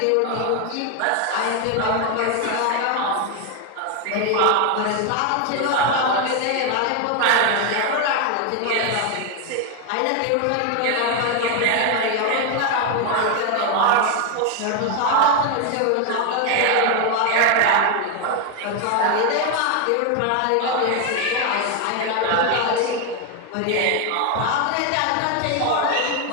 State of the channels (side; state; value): both; different; correlation 0.01